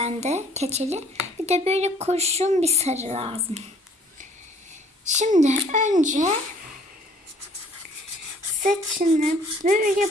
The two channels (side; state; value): both; normal; correlation 0.57